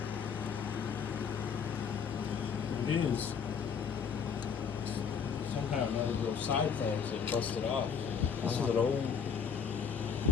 It is. Somehow none of those side things have busted off. This is an old,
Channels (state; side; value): quieter; right; 6.7 dB